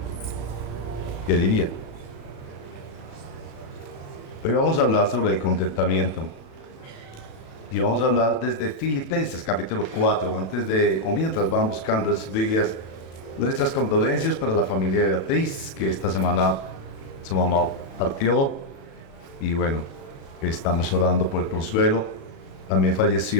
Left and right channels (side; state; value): right; late; 37 ms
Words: ¿Qué diría? Hoy vamos a hablar sobre el contentamiento. Y vamos a hablar desde Filipenses capítulo 4, mientras van buscando en sus Biblias, nuestras condolencias para la familia de Beatriz, que esta semana su mamá partió, y bueno, estamos orando por el consuelo. También